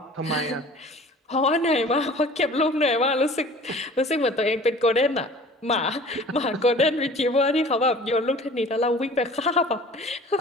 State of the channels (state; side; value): normal; both; correlation 0.46